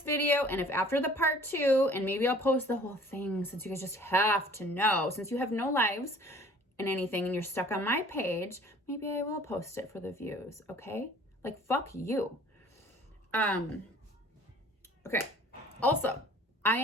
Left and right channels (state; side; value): normal; both; correlation 0.51